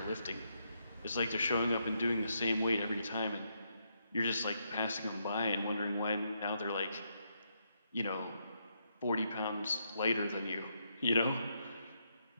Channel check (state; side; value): inverted; both; correlation -0.79